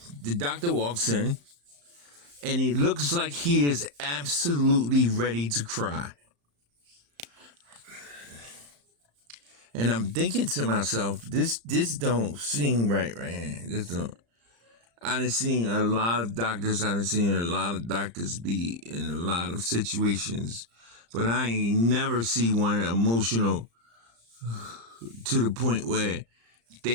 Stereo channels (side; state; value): left; late; 35 ms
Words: the doctor walks in and he looks like he is absolutely ready to cry. And I'm thinking to myself, this don't seem right here. This don't. I done seen a lot of doctors. I done seen a lot of doctors be in a lot of situations, but I ain't never see one emotional to the point where